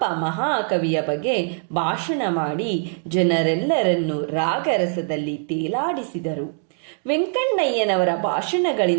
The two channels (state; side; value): silent; left; 61 dB below the other